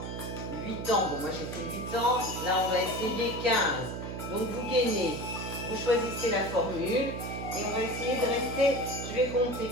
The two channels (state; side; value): noise; right; hum, 6 dB below the sound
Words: 8 ans, bon moi j'ai fait 8 ans, là on va essayer 15. Donc vous gainez, vous choisissez la formule et on va essayer de rester, je vais compter